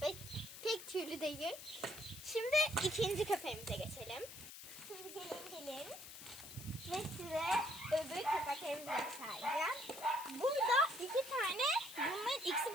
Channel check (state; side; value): noise; left; hiss, 13 dB below the sound